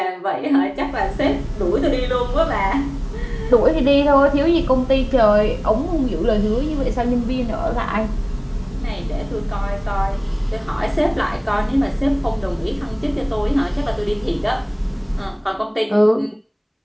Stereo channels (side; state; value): both; identical; correlation 1.00